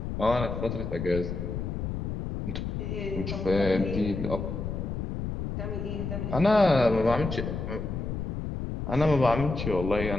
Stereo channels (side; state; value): left; noise; rumble, 4 dB below the sound